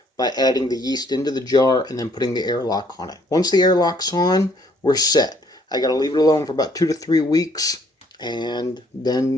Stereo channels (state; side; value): normal; both; correlation 0.64